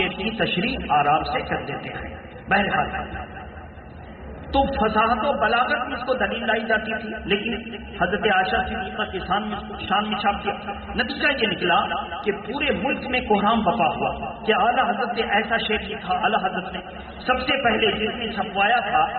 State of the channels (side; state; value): both; identical; correlation 1.00